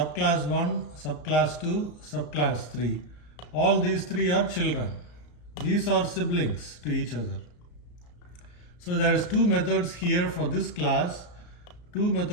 1, subclass 2, subclass 3. All these three are children. These are siblings to each other. So there is two methods here for this class, two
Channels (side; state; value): right; late; 34 ms